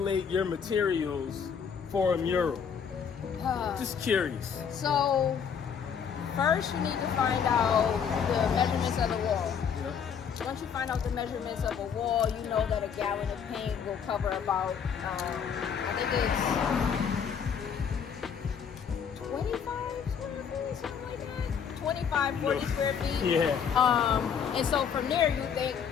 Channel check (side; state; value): right; quieter; 7.2 dB